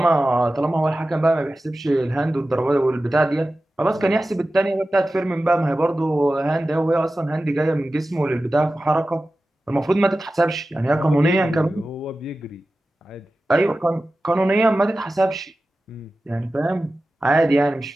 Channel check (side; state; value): both; normal; correlation 0.95